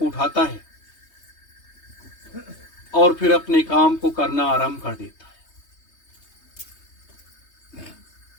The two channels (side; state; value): right; late; 3.2 ms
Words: उठाता है और फिर अपने काम को करना आरंभ कर देता है।